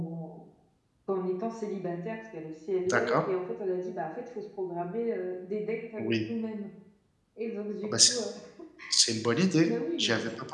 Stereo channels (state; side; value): identical; both; correlation 1.00